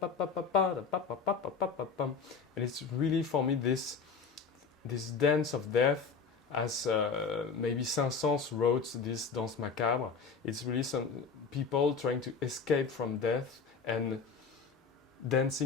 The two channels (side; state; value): right; quieter; 5.4 dB